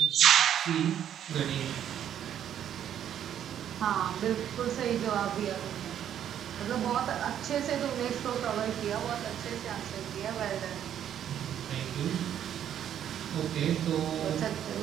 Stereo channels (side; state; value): left; quieter; 10.0 dB